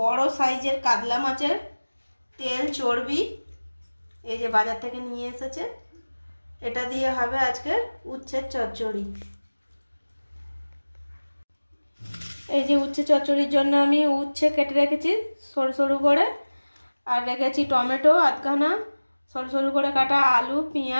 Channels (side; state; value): both; inverted; correlation -1.00